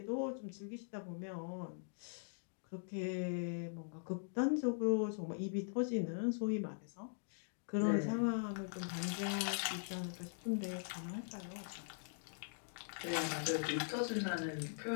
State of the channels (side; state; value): right; silent; digital silence